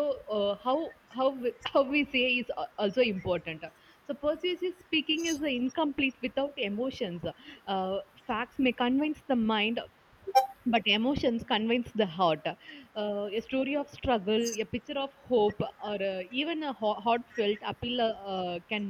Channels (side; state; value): both; identical; correlation 1.00